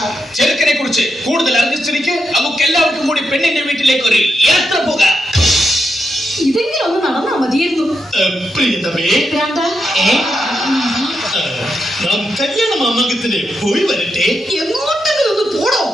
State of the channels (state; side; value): normal; both; correlation 0.84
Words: ചെറുക്കനെ കുറിച്ച് കൂടുതൽ അറിഞ്ഞിരിക്ക്. നമുക്ക് എല്ലാവർക്കും കൂടി പെണ്ണിന്റെ വീട്ടിലേക്ക് ഒരു യാത്ര പോകാം. ഇതെങ്കിലും ഒന്ന് നടന്നാ മതിയായിരുന്നു. പ്രിയതമേ, ഭ്രാന്താ? നാം കല്യാണ മാമാങ്കത്തിന് പോയി വരട്ടെ. എങ്ങോട്ടെങ്കിലും ഒന്ന് പോടോ.